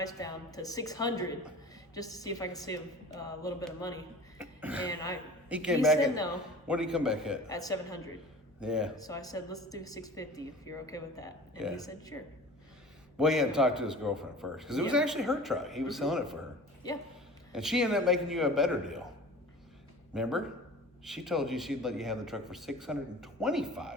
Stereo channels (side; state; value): both; normal; correlation 0.41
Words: down to 600, just to see if I could save a little bit of money. And He came back said at no What did he come back at? at 700. Yeah. So I said, let's do 650 if you're okay with that. And Yeah. he said, sure. Well, he had to talk to his girlfriend first because it was Yeah. actually her truck. He was selling it for her, Yeah. and she ended up making you a better deal. Remember? She told you she'd let you have the truck for